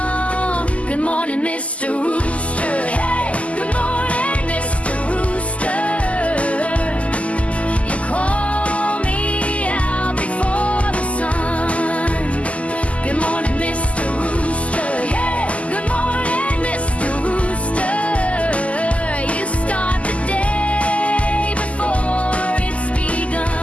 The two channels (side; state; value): right; late; 0.066 ms